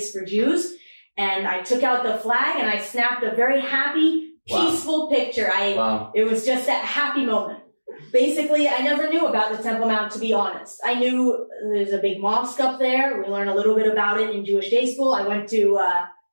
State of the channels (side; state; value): both; inverted; correlation -1.00